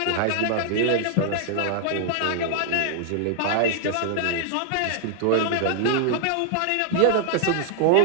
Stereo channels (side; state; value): both; different; correlation -0.01